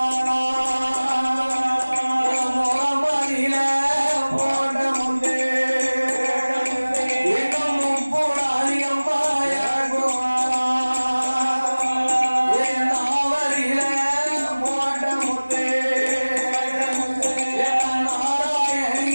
முகமதியில போட்ட முத்தே இன்னும் முப்புடாதி அம்மா இறக்குவானா. நாவரியில போட்ட முத்தே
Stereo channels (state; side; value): inverted; both; correlation -1.00